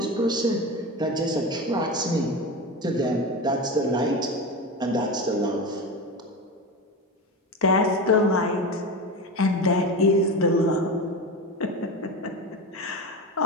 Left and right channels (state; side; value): normal; both; correlation 0.23